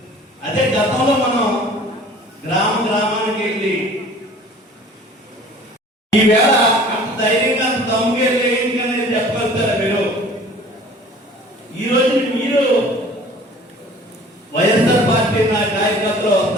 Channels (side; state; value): both; normal; correlation 0.48